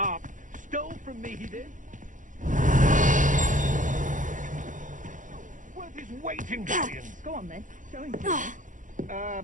Stole from me, he did. Worth his weight in billions. Go on, then. Show him.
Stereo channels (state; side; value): late; left; 0.37 ms